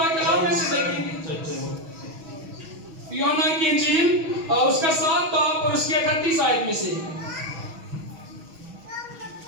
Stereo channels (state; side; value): late; left; 6.2 ms